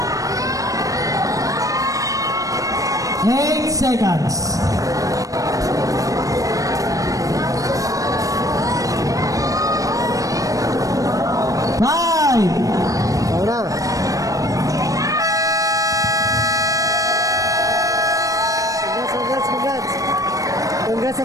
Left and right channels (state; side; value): late; left; 0.16 ms